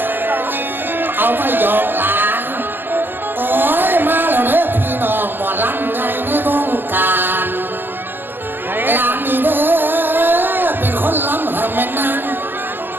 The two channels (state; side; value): late; left; 0.093 ms